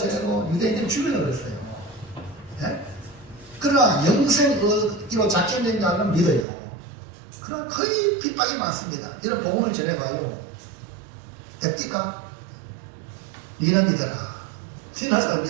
유대인들을 죽이려고 그랬어요. 네? 그러나 영생의로 작정된 자는 믿어요. 그러나 거의 핍박이 많습니다. 이런 복음을 전해봐요. 됩니까? 니는 믿어라. 신하사를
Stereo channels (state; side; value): drops out; left; at 6.5 s